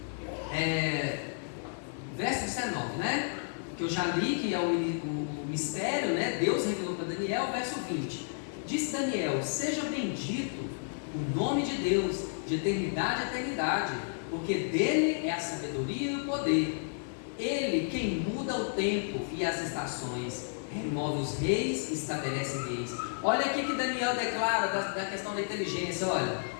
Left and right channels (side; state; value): right; silent; 57 dB below the other